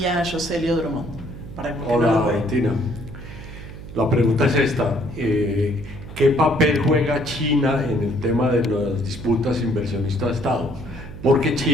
a Yoselio Drummond. Hola, Bettina. La pregunta es esta. ¿Qué papel juega China en el tema de las disputas inversionista-Estado? Porque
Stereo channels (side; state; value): right; noise; hum, 13 dB below the sound